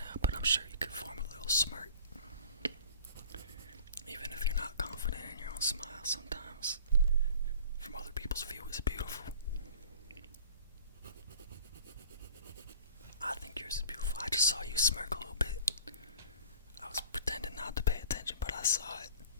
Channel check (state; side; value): inverted; both; correlation -0.44